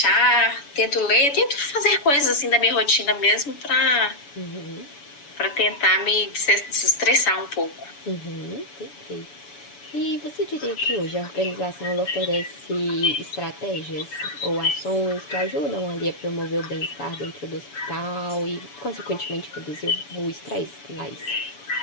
Tento ler, tento fazer coisas assim da minha rotina mesmo para tentar me desestressar um pouco. Perfeito. E você diria que hoje a organização ela oferece estratégias ou ações que ajudam ali a promover o bem-estar dentro do hospital e, consequentemente, reduzir o estresse lá?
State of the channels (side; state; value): right; late; 7.0 ms